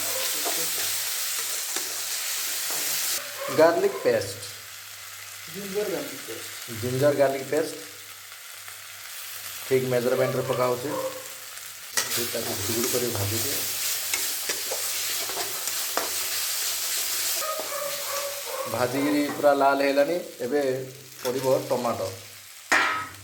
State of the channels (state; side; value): identical; both; correlation 1.00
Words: garlic paste, ginger garlic paste. Ginger garlic paste ଠିକ୍ ମେଜରମେଣ୍ଟରେ ପକା ହେଉଛି। ତାକୁ ଗୁଡ଼ କରି ଭାଜୁଛି। ଭାଜିକିରି ପୁରା ଲାଲ ହେଇଲାନି। ଏବେ ପଡ଼ିବ ଟମାଟୋ।